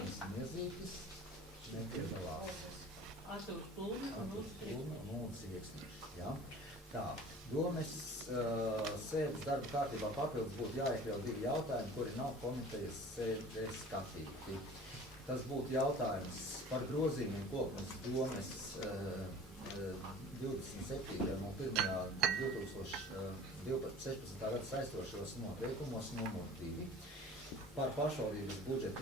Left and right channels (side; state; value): both; normal; correlation 0.44